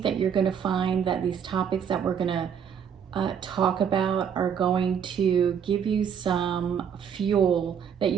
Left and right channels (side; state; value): left; quieter; 7.7 dB